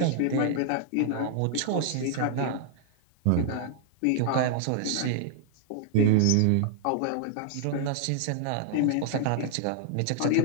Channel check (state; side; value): different; both; correlation -0.01